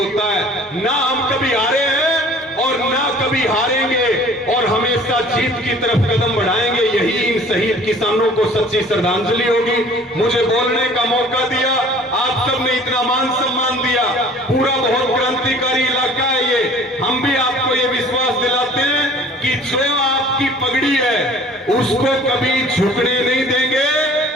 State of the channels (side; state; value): both; normal; correlation 0.49